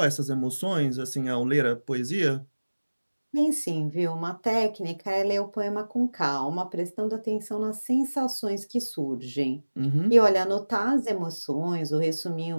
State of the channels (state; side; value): inverted; both; correlation -1.00